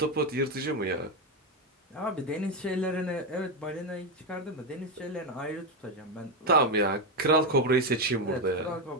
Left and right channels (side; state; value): both; normal; correlation 0.08